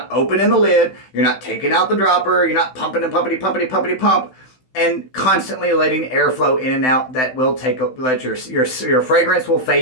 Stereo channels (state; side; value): late; right; 16 ms